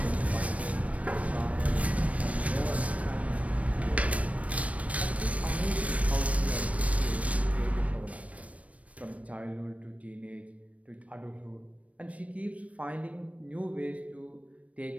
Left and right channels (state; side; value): late; left; 0.066 ms